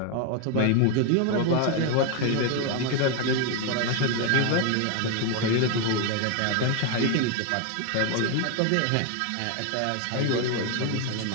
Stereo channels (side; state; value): both; different; correlation 0.01